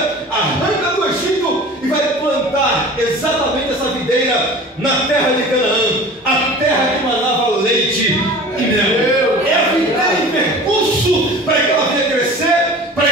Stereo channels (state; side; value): normal; both; correlation 0.40